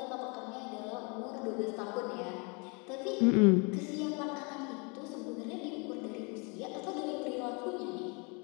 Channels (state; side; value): quieter; right; 32.3 dB